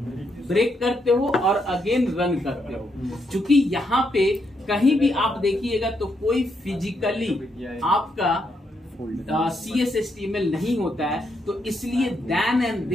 ब्रेक करते हो और अगेन रन करते हो। चूंकि यहाँ पे कहीं भी आप देखिएगा तो कोई फिजिकली आपका CSHTML नहीं होता है, तो इसलिए देन एंड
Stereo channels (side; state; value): both; normal; correlation 0.78